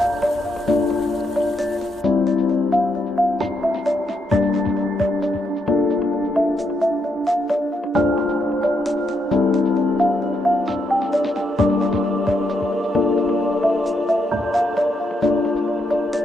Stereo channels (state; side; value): normal; both; correlation 0.79